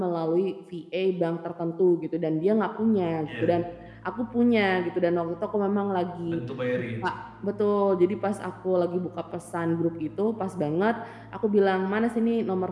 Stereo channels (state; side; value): identical; both; correlation 1.00